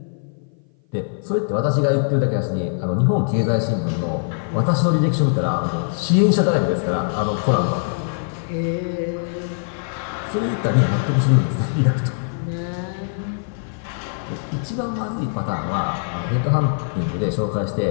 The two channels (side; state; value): right; silent; 57 dB below the other